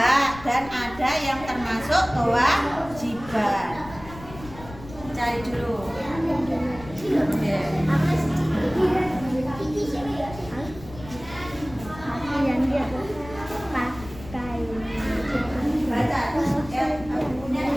dan ada yang termasuk kewajiban. Cari dulu. Ya. Baca. Punya.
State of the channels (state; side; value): noise; left; rumble, 16 dB below the sound